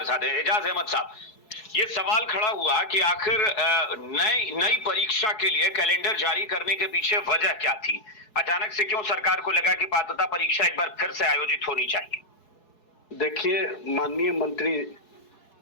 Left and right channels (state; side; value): late; right; 4.7 ms